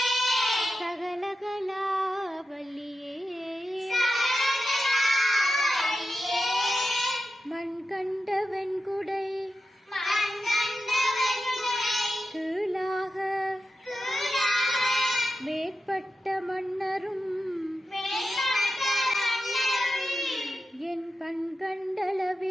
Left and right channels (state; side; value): normal; both; correlation 0.90